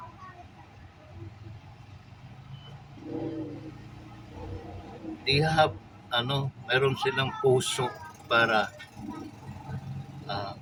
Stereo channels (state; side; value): identical; both; correlation 1.00